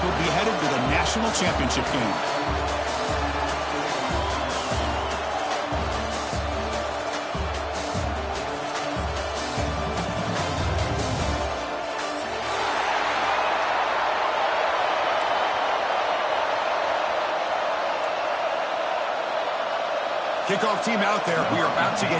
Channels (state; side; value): identical; both; correlation 1.00